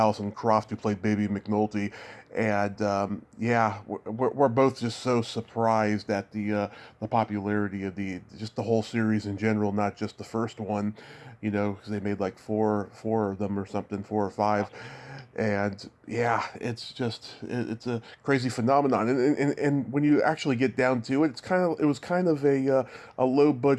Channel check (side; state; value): both; identical; correlation 1.00